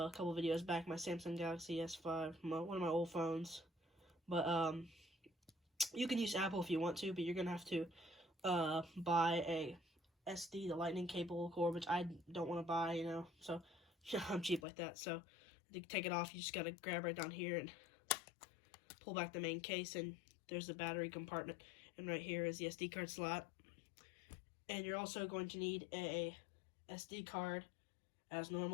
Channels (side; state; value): right; drops out; at 14.6 s